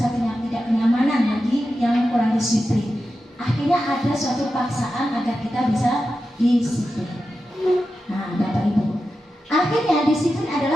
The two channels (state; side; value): normal; both; correlation 0.91